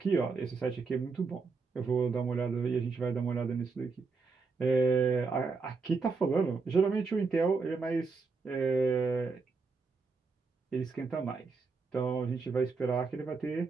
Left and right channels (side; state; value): left; quieter; 4.4 dB